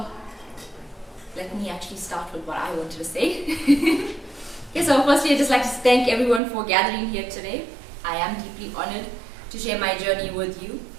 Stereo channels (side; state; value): left; drops out; at 6.4 s